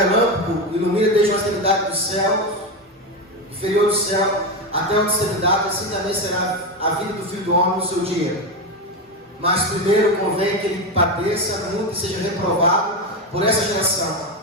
ilumina desde a extremidade do céu, inferior do céu, até a extremidade, assim também será a vida do Filho do Homem no seu dia. Mas primeiro convém que ele padeça muito e seja reprovado por essa geração.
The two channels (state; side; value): normal; both; correlation 0.14